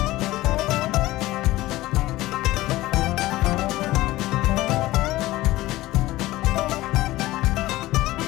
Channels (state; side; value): quieter; right; 17.5 dB